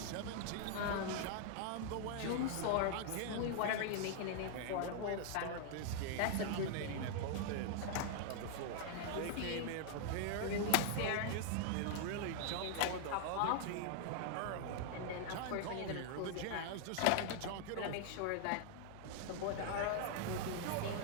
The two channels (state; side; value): different; both; correlation 0.00